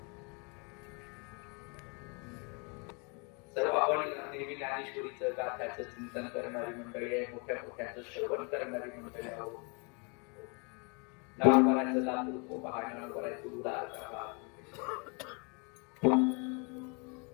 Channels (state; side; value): quieter; right; 34.1 dB